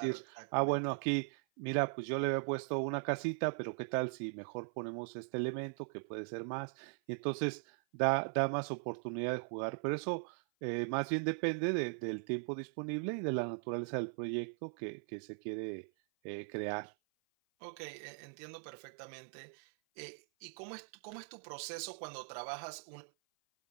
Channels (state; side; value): silent; left; 52 dB below the other